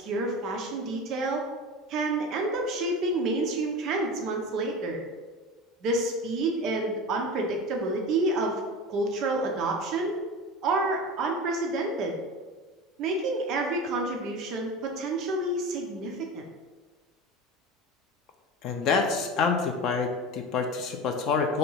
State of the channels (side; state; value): both; normal; correlation 0.29